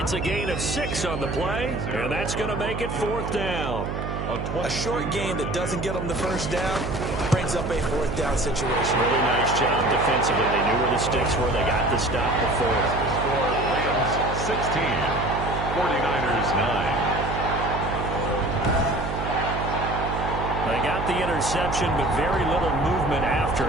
a gain of 6 on the play, and that's going to make it 4th down. A short game that doesn't get them the first down brings up a 4th down situation. Really nice job defensively. They knew where the sticks were. They got the stop before. The score, Rams 16, 49ers 9. They got the interception, but very little movement after,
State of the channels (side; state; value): right; noise; hum, 4 dB below the sound